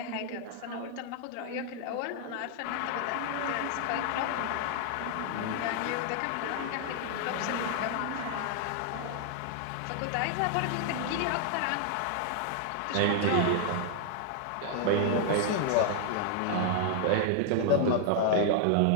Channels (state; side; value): different; both; correlation 0.00